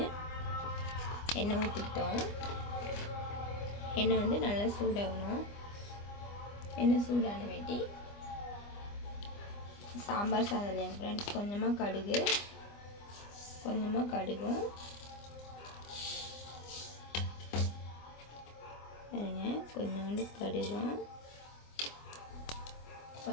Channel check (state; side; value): late; right; 25 ms